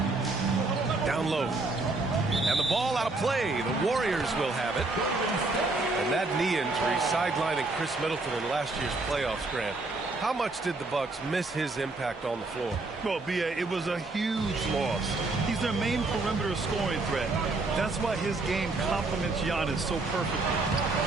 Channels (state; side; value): quieter; left; 3.3 dB